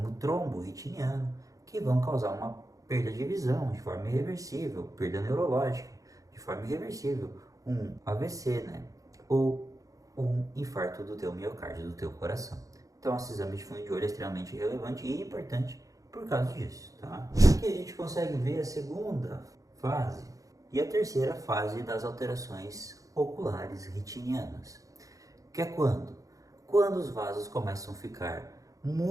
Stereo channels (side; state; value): left; late; 0.16 ms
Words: trombo retiniano, que vão causar uma perda de visão de forma irreversível, perda neurológica de forma irreversível, um AVC, né? Ou um infarto do teu miocárdio, do teu coração. Então esse exame de fundo de olho é extremamente relevante e importante por causa disso, tá? Aqui a gente consegue ver a segunda fase e a terceira fase das alterações oculares retinianas, que é quando? Quando os vasos começam a ficar